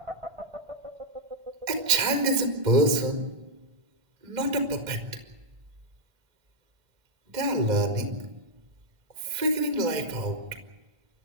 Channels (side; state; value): left; late; 1.5 ms